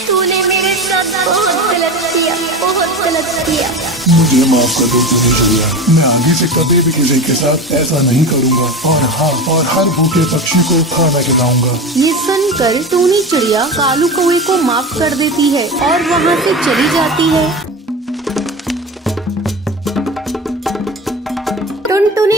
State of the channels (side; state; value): both; normal; correlation 0.27